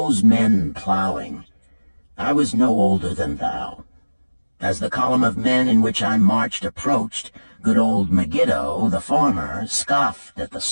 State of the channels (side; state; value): both; inverted; correlation -1.00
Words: men plowing. I was no older than thou. As the column of men in which I marched approached, good old Megiddo, the farmer, scoffed at the